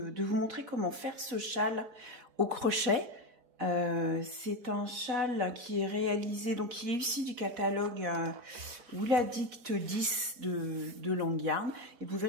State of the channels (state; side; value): late; left; 4.1 ms